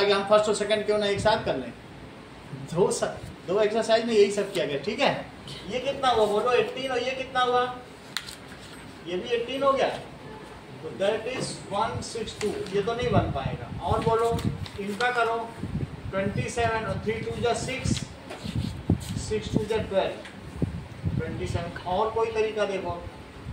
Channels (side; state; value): both; identical; correlation 1.00